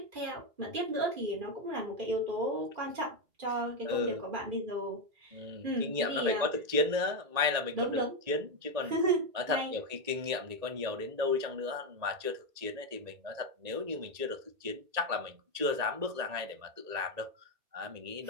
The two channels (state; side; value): late; left; 1.9 ms